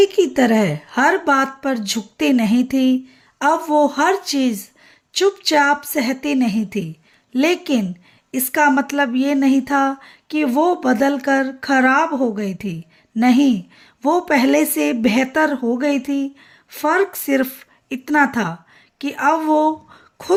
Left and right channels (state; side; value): identical; both; correlation 1.00